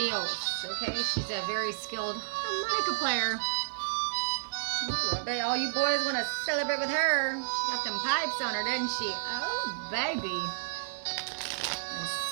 okay? She's a very skilled harmonica player. Ooh, I bet all you boys want to celebrate with her. She got them pipes on her, doesn't she? Oh, baby. And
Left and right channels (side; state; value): left; silent; 57 dB below the other